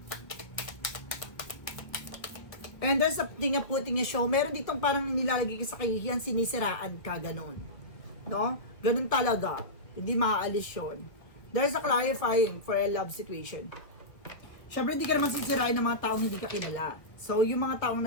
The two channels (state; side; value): late; right; 1.3 ms